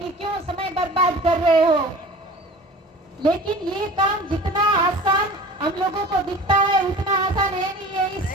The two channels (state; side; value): normal; both; correlation 0.41